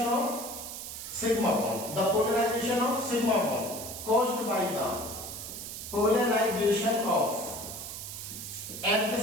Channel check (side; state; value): right; noise; hiss, 8 dB below the sound